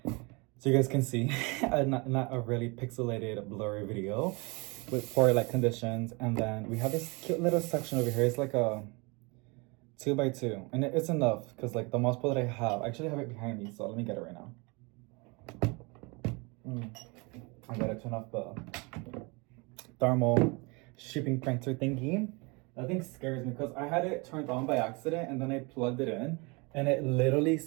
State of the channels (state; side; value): quieter; left; 28.5 dB